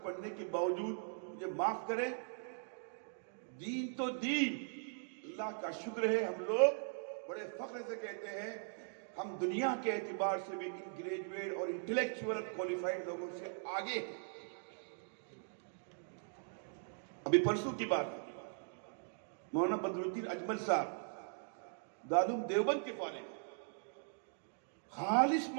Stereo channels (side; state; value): left; silent; digital silence